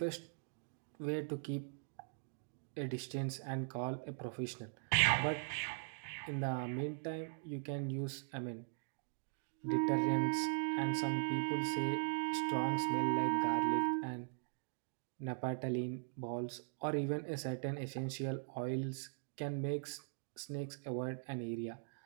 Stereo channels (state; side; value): silent; left; digital silence